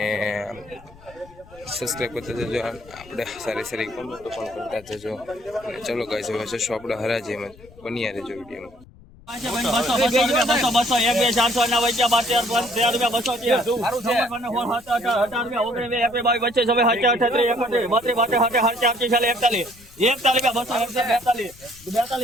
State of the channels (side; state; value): left; noise; rumble, 23 dB below the sound